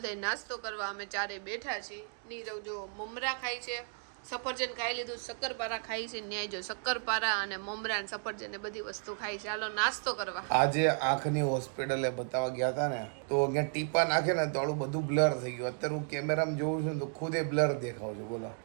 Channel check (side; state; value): left; silent; 55 dB below the other